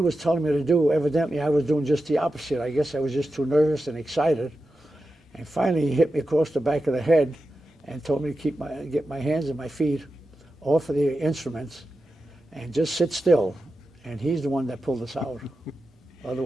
telling me to do, evidently I was doing just the opposite. I guess I was just too nervous and excited. And finally he hit me across the back of the head and told me to get my hands and my feet off of the instruments and just sit still. And he's the one that pulled us out.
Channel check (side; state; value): both; normal; correlation 0.91